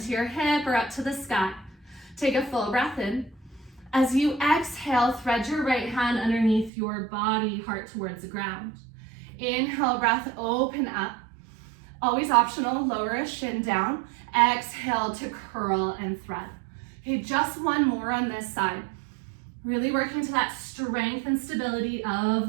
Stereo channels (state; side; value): drops out; left; at 6.7 s